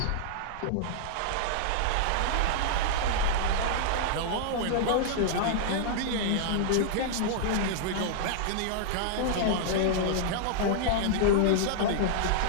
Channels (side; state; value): both; different; correlation -0.01